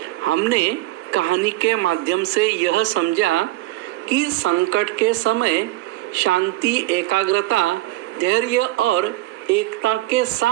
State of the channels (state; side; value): quieter; left; 17.1 dB